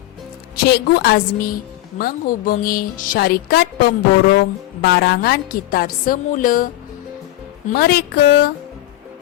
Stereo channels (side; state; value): right; quieter; 15.6 dB